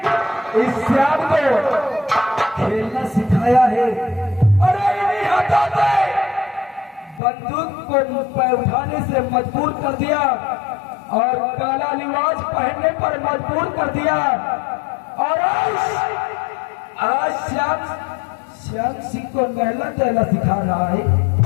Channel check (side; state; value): right; drops out; at 7.2 s